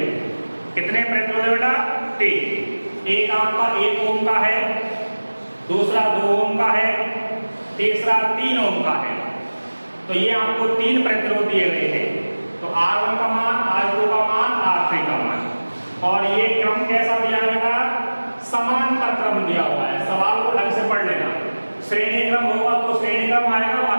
कितने प्रतिरोध है बेटा? 3। एक आपका 1 ओम का है, दूसरा 2 ओम का है, तीसरा 3 ओम का है। तो ये आपको 3 प्रतिरोध दिए गए हैं। तो R1 का मान, R2 का मान, R3 का मान। और ये क्रम कैसा दिया गया? समांतर क्रम दिया हुआ है। सवाल को ढंग से पढ़ लेना। श्रेणी क्रम होगा तो श्रेणी क्रम आएगा,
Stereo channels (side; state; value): both; inverted; correlation -1.00